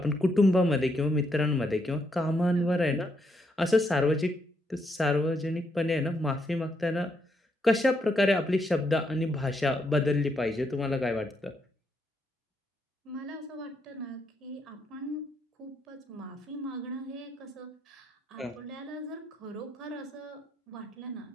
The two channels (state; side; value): normal; both; correlation 0.77